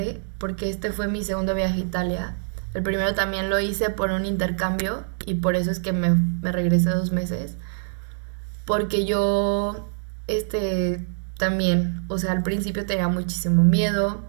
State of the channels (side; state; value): left; silent; digital silence